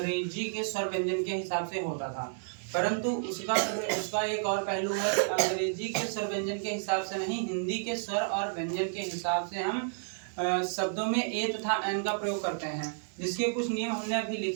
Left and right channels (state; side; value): silent; left; digital silence